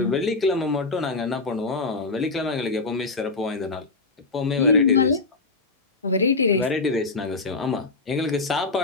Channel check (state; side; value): quieter; right; 3.7 dB